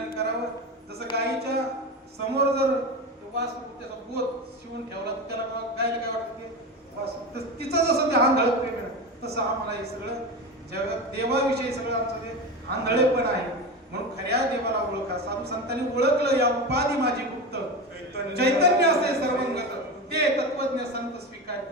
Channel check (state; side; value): normal; both; correlation 0.23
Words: करावं जसं गायीच्या समोर जर वासरू त्याचा बोध शिवून ठेवला तर त्याला गायला काय वाटतं ते वासरू तिचं जसं ते आंधळ प्रेम आहे तसं आम्हाला हे सगळं जगात देवाविषयी सगळं आमचं ते आंधळेपण आहे. म्हणून खऱ्या देवाला ओळखा. साधू संतांनी ओळखलं या उपाधी माझी गुप्त चैतन्य असे सर्वंगत ते तत्वज्ञ संत स्वीकार.